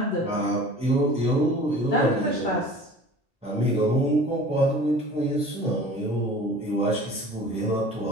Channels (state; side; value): normal; both; correlation 0.43